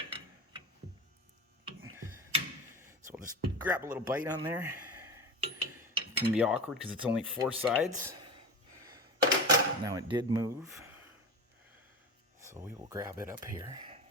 So we'll just grab a little bite on there. It can be awkward because it's only 4 sides. Now it did move. So we will grab it up here.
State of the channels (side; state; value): both; normal; correlation 0.27